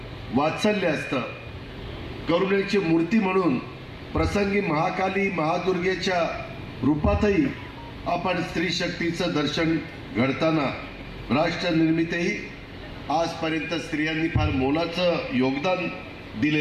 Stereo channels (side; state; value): both; identical; correlation 1.00